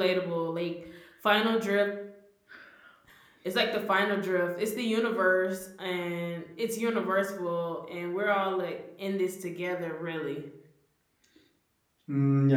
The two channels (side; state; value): both; identical; correlation 1.00